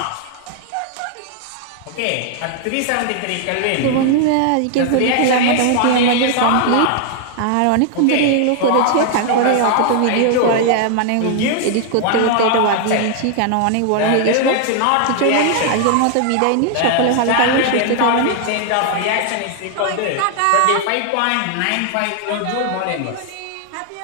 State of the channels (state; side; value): different; both; correlation 0.00